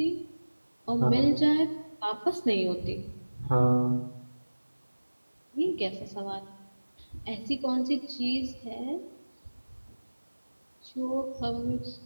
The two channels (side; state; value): both; inverted; correlation -1.00